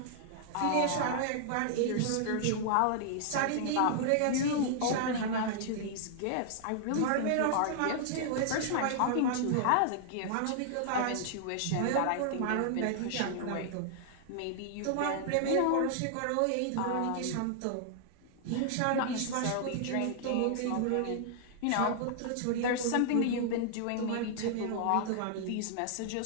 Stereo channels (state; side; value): different; both; correlation -0.01